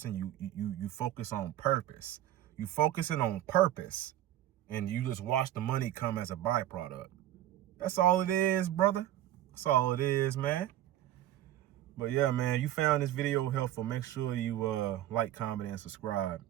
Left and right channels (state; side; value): quieter; left; 13.0 dB